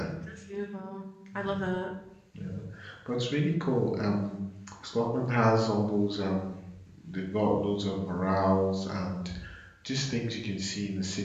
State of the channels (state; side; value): identical; both; correlation 1.00